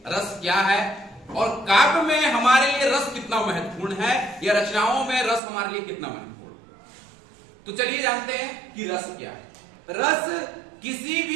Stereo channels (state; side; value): drops out; left; at 5.4 s